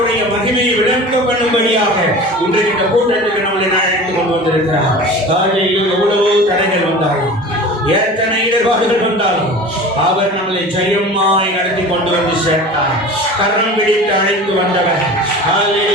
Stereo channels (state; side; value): normal; both; correlation 0.37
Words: மகிமையை விளங்க பண்ணும்படியாக இன்றைக்கு இந்த கூட்டத்துக்கு நம்மளை அழைத்துக் கொண்டு வந்திருக்கிறார். எவ்வளவோ தடைகள் வந்தாலும், எத்தனை இடர்பாடுகள் வந்தாலும் அவர் நம்மளை ஜெயமாய் நடத்தி கொண்டு வந்து சேர்த்தார். கரம் பிடித்து அழைத்து வந்தவர்.